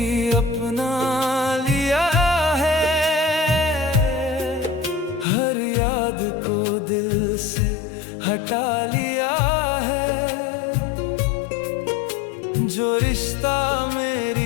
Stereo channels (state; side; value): drops out; right; at 5.2 s